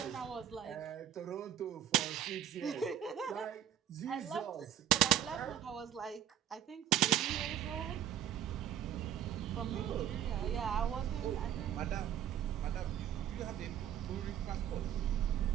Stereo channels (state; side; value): quieter; left; 10.8 dB